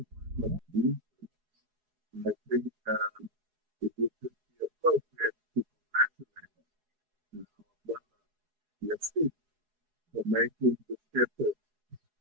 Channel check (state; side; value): late; left; 4.8 ms